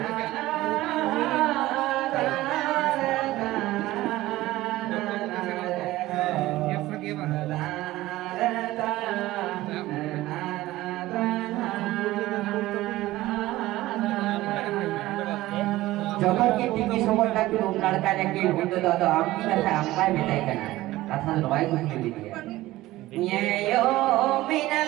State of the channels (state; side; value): quieter; left; 17.0 dB